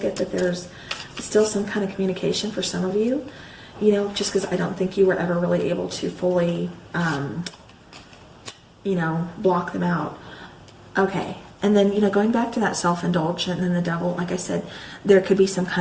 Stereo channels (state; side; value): identical; both; correlation 1.00